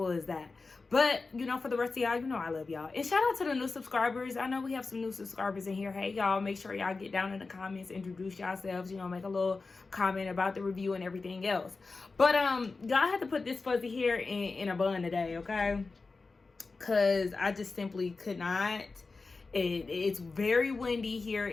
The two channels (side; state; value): right; quieter; 4.0 dB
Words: as that. But, for the rest of y'all, I love y'all. And shout out to the new subscribers. I know we have some new subscribers in here. Hey, y'all, make sure y'all get down in the comments, introduce yourselves, make a little comment about the review and everything else. But, y'all had to put this fuzzy hair in a bun today, okay? Because I just simply could not. It's very windy here